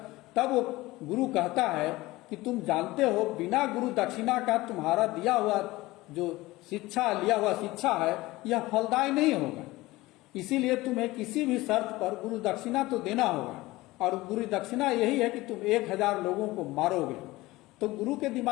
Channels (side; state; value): right; quieter; 19.4 dB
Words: तब वो गुरु कहता है कि तुम जानते हो बिना गुरु दक्षिणा का तुम्हारा दिया हुआ जो शिक्षा, लिया हुआ शिक्षा है, यह फलदायी नहीं होगा। इसीलिए तुम्हें किसी भी शर्त पर गुरु दक्षिणा तो देना होगा, और गुरु दक्षिणा यही है कि तुम 1000 लोगों को मारोगे। तो गुरु के